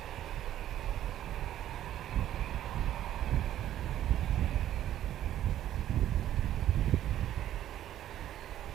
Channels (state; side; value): quieter; left; 12.1 dB